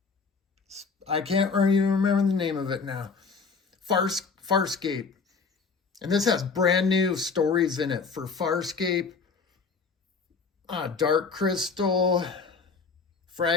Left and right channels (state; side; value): quieter; right; 5.0 dB